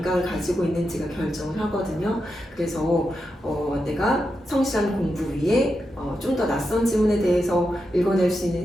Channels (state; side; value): normal; both; correlation 0.87